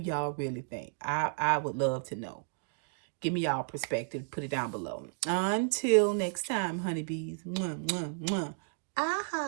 really think? I would love to know. Give me y'all perspective. Put it down below. Until next time, honeybees. Mwah, mwah, mwah. I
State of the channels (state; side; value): silent; left; digital silence